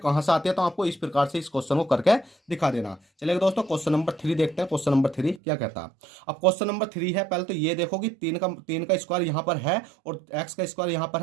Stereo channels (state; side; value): drops out; left; at 5.4 s